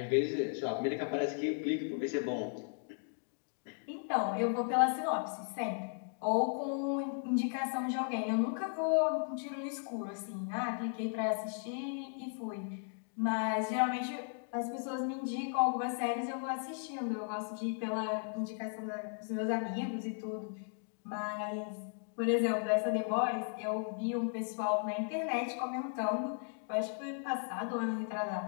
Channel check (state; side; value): silent; right; 54 dB below the other